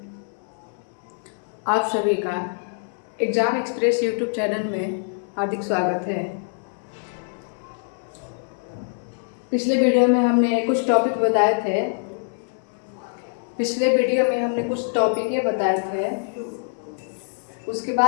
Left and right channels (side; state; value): right; silent; 62 dB below the other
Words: आप सभी का एग्ज़ाम एक्सप्रेस यूट्यूब चैनल में हार्दिक स्वागत है। पिछले वीडियो में हमने कुछ टॉपिक बताए थे। उसके